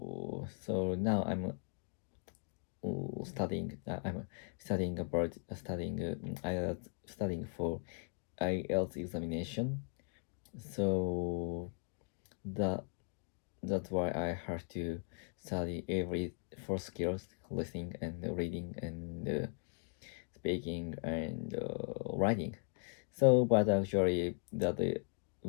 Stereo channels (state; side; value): silent; right; 52 dB below the other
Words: now I'm studying about studying for IELTS examination. So that that's why I have to study every four skills: listening and reading and speaking and writing. So, but actually, but the